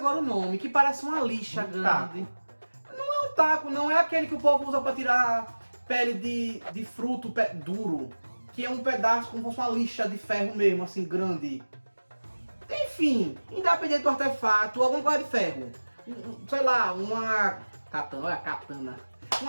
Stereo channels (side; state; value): both; inverted; correlation -1.00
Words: o nome, que parece uma lixa grande. Não é um taco, não é aquele que o povo usa pra tirar pele de fruto duro, que é um pedaço como se fosse uma lixa de ferro mesmo, assim, grande. Enfim, independente do artefato, alguma coisa de ferro. Sei lá, uma katana, olha a katana.